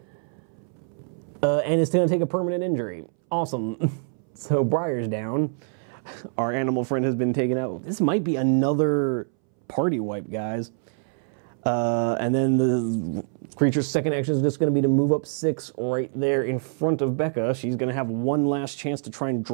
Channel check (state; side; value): silent; left; 62 dB below the other